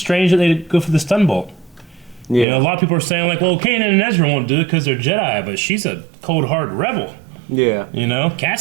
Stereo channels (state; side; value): drops out; left; at 2.5 s